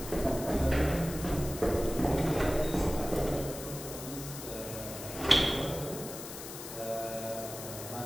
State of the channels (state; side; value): noise; left; hiss, 10 dB below the sound